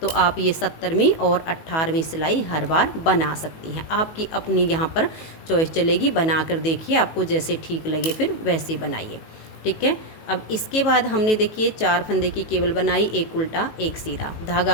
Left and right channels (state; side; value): late; right; 18 ms